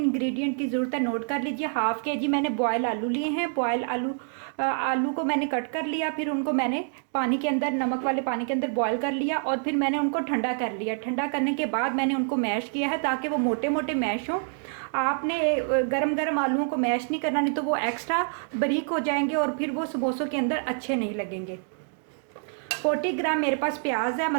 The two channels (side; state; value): left; silent; 60 dB below the other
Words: इंग्रेडिएंट की ज़रूरत है नोट कर लीजिए। हाफ़ के जी मैंने बॉयल आलू लिए हैं। बॉयल आलू को मैंने कट कर लिया, फिर उनको मैंने पानी के अंदर, नमक वाले पानी के अंदर बॉयल कर लिया, और फिर मैंने उनको ठंडा कर लिया। ठंडा करने के बाद मैंने उनको मैश किया है ताकि वो मोटे मोटे मैश हों। आपने गरम गरम आलूओं को मैश नहीं करना, नहीं तो वो एक्स्ट्रा बारीक हो जाएंगे और फिर वो समोसों के अंदर अच्छे नहीं लगेंगे। 40 ग्राम मेरे पास प्याज है,